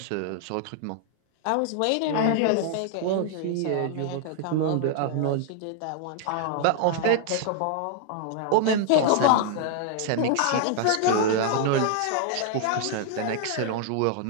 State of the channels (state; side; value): different; both; correlation 0.00